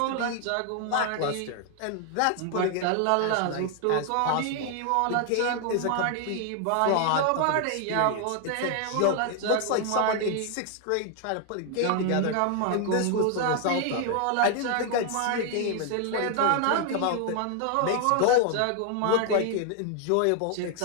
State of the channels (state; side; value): different; both; correlation 0.00